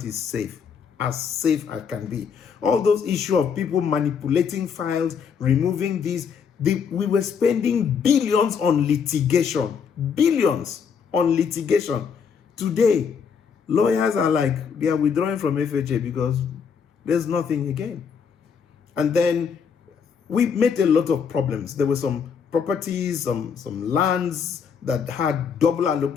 is safe as can be. All those issues of people manipulating files, removing these, we were spending billions on litigation. Billions on litigation. Today, lawyers are like, they are withdrawing from FHA because there's nothing again. And then we met a lot of problems. There were some properties, some lands that had double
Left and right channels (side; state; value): right; quieter; 6.6 dB